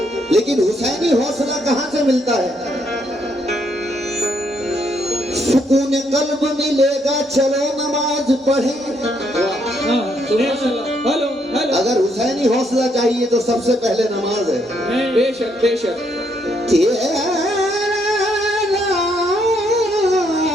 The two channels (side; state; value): both; normal; correlation 0.73